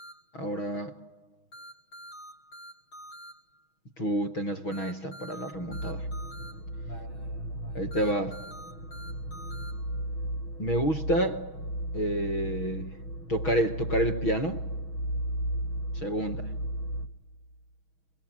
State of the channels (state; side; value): late; right; 6.3 ms